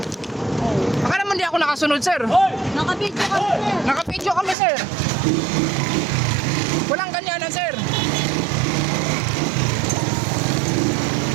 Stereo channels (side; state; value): left; drops out; at 4.5 s